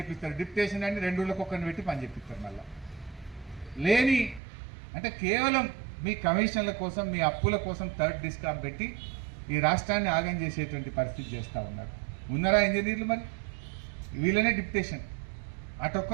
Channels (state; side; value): drops out; left; at 4.4 s